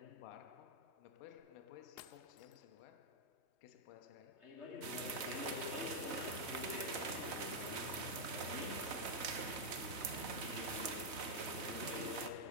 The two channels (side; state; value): left; late; 4.0 ms